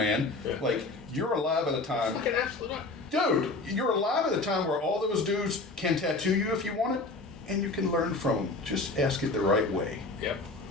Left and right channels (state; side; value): quieter; right; 3.3 dB